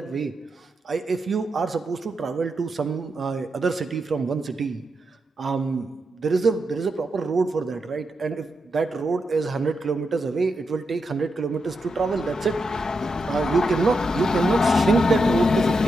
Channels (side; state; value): both; normal; correlation 0.85